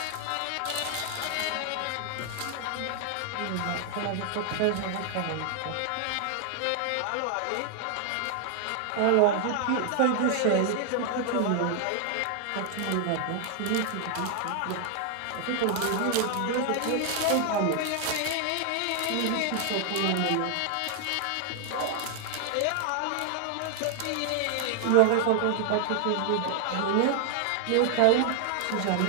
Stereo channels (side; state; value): both; different; correlation 0.00